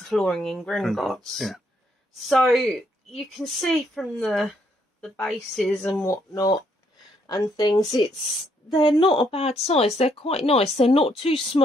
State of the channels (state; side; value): normal; both; correlation 0.72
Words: flooring in Gringotts. Yeah. So you can see from the bases and whatnot and things, they're not a bad size. They're quite nice. They're not too